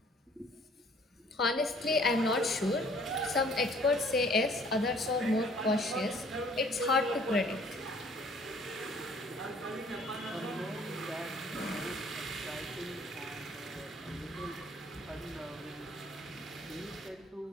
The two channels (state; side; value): normal; both; correlation 0.57